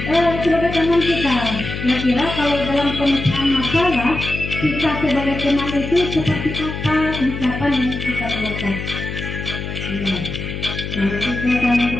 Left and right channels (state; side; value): noise; left; hum, 6 dB below the sound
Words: sebagai teman kita. Kira-kira kalau dalam pemecahan masalah, kita sebagai teman itu seperti apa ucapan yang kita keluarkan? Nah, itu yang